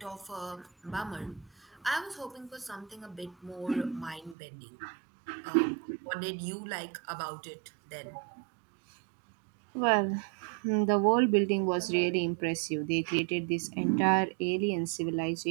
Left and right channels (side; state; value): left; drops out; at 4.4 s